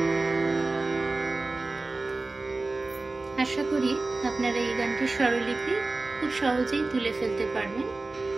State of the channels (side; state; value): left; quieter; 3.4 dB